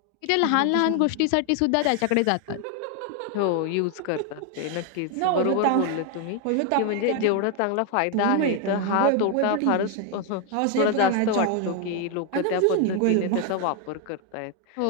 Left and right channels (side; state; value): both; different; correlation 0.01